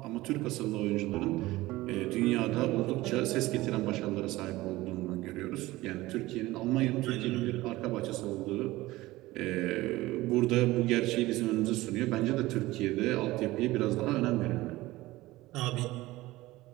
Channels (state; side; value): quieter; left; 18.5 dB